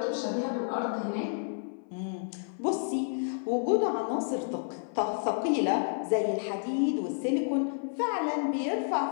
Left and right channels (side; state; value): right; silent; 56 dB below the other